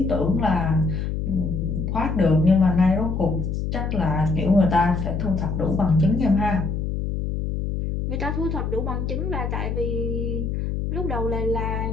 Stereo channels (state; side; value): noise; left; hum, 2 dB below the sound